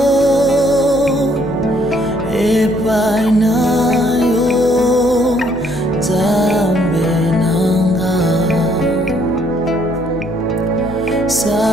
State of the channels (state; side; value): normal; both; correlation 0.67